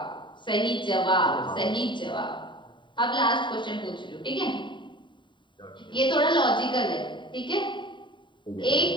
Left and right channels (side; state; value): right; late; 0.23 ms